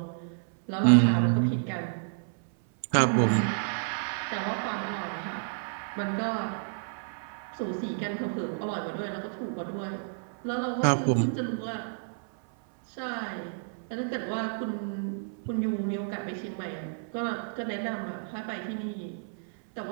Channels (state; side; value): silent; left; 58 dB below the other